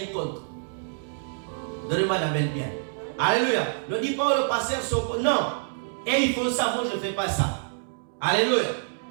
contre. Donnez-moi la belle bien. Alléluia. Ne dis pas le pasteur, non. Et ils font ça, moi je ne fais pas ça. Alléluia.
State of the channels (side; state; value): left; silent; digital silence